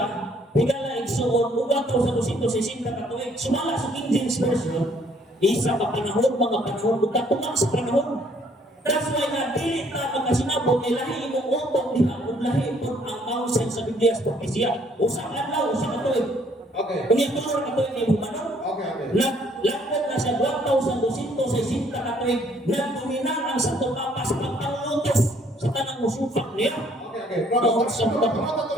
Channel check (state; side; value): normal; both; correlation 0.63